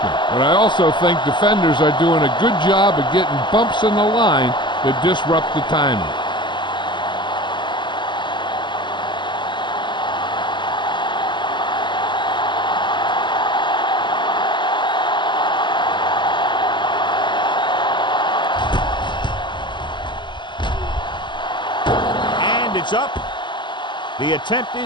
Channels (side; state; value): right; late; 0.22 ms